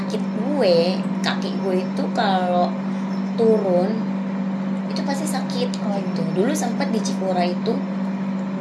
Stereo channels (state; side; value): identical; both; correlation 1.00